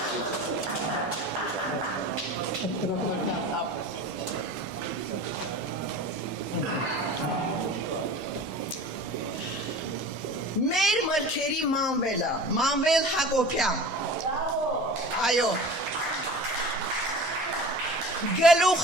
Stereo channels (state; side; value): normal; both; correlation 0.37